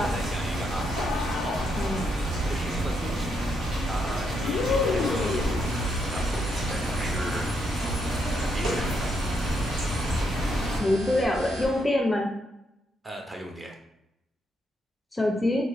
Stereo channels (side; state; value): both; normal; correlation 0.78